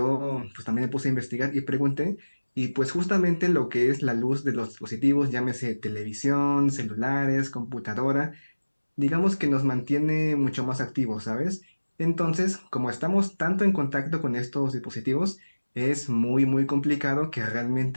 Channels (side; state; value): both; inverted; correlation -1.00